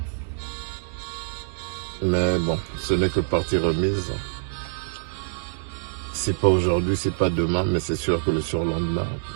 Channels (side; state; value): left; silent; digital silence